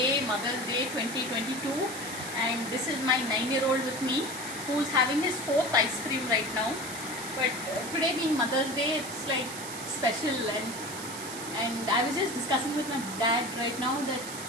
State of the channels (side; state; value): right; noise; hiss, 9 dB below the sound